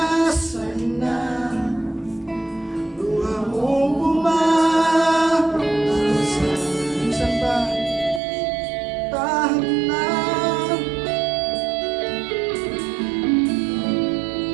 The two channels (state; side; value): drops out; left; at 8.2 s